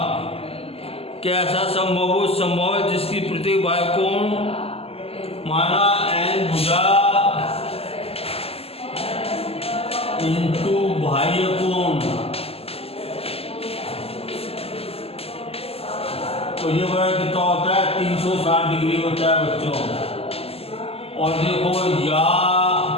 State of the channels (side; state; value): right; late; 0.29 ms